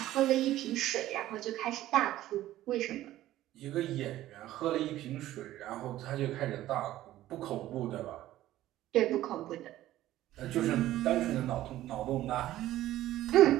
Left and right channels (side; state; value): left; quieter; 14.5 dB